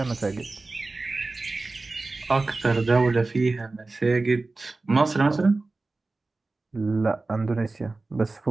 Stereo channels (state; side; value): quieter; left; 3.4 dB